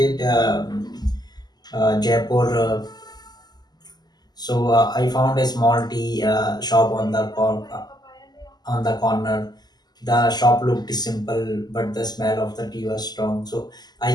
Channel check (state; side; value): late; right; 0.20 ms